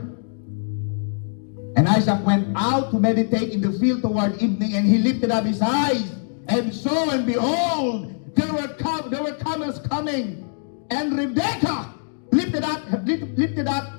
and Isaac went out to meditate in the field toward evening, and he lifted up his eyes, and saw, and behold, there were camels coming, and Rebekah lifted up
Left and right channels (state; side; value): silent; right; digital silence